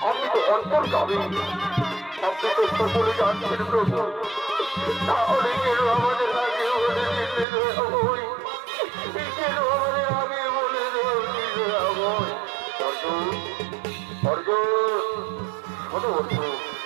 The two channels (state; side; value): drops out; left; at 7.5 s